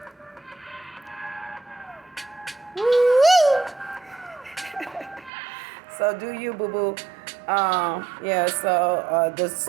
So do you, boo-boo. The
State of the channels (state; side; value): drops out; left; at 5.3 s